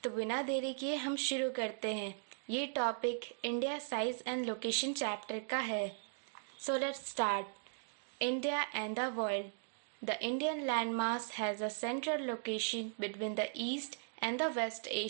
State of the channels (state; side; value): silent; left; digital silence